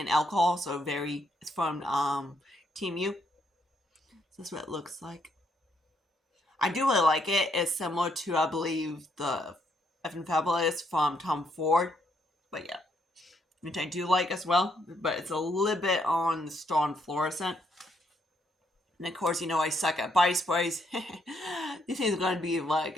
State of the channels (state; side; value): normal; both; correlation 0.74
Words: alcohol, so it's from Team U. So that's what it looks like. I do really like it. It's similar to, I believe, the F and Fabulous from Tom Ford, but yeah, which I do like as well, but it's a little bit on the strong fluorescent. And of course, you know I suck at body sprays. These things are going to be